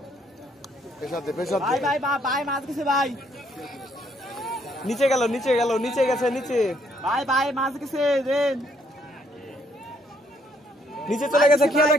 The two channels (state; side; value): normal; both; correlation 0.69